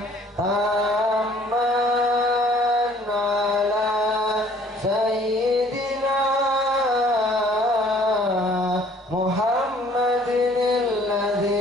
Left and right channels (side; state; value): both; normal; correlation 0.57